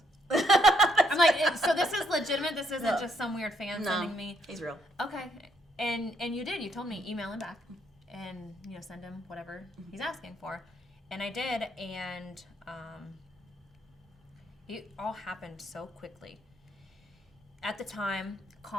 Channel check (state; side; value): normal; both; correlation 0.72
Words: I'm like, so this is legitimate? This isn't just some weird fan sending me? He's real. Okay. And you did. You told me email him back and, send him whatever he's asking for. And I did, and it all happened so quickly. At the time,